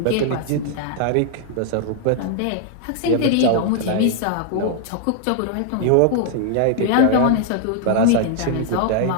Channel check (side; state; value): both; different; correlation 0.00